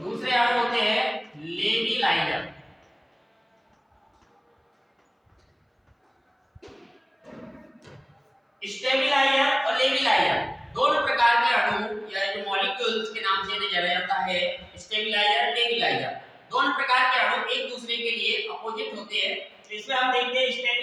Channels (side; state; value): both; identical; correlation 1.00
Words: अणु होते हैं लेबिलाइजर। स्टेबिलाइजर और लेबिलाइजर दोनों प्रकार के अणु या जो मॉलिक्यूल्स के नाम से इन्हें जाना जाता है, स्टेबिलाइजर, लेबिलाइजर, दोनों प्रकार के अणु एक दूसरे के लिए अपोजिट होते हैं। तो इसमें हम देखते हैं